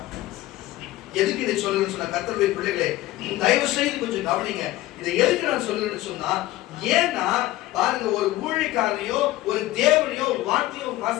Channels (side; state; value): right; quieter; 16.6 dB